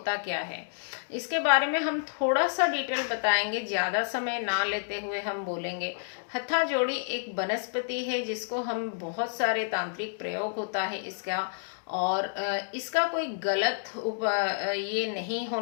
क्या है, इसके बारे में हम थोड़ा सा डिटेल बताएंगे, ज़्यादा समय ना लेते हुए हम बोलेंगे। हत्था जोड़ी एक वनस्पति है जिसको हम बहुत सारे तांत्रिक प्रयोग होता है इसका, और इसका कोई गलत ये नहीं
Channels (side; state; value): right; silent; digital silence